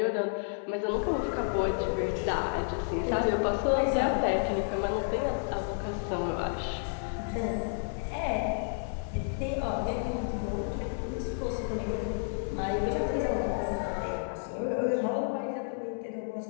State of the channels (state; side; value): silent; right; 57 dB below the other